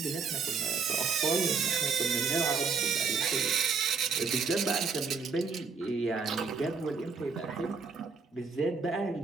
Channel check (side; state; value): left; quieter; 5.0 dB